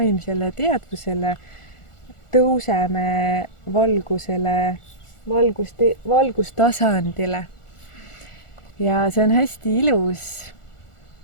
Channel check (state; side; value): late; right; 1.4 ms